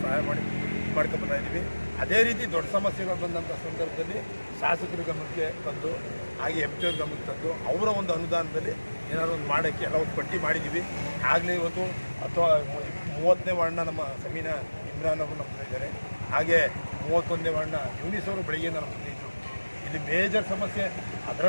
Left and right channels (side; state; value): both; inverted; correlation -1.00